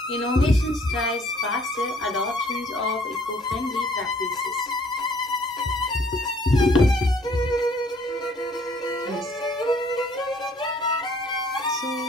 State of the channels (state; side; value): normal; both; correlation 0.60